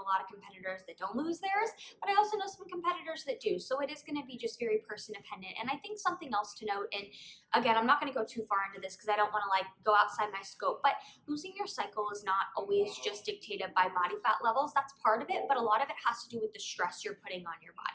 lot of competitors that don't lose theirs, but I also know some competitors that do. So it is going to be just very person dependent. And I think something else to note, and again, I'm not going to go too far into this because I don't want to like go outside my scope, but losing your cycle is not always just dictated by body fat levels. That's part of it, but a lot of it has to do with the stress you're putting on your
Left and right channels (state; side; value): identical; both; correlation 1.00